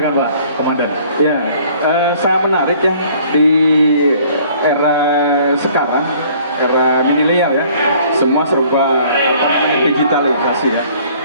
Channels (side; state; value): both; inverted; correlation -0.56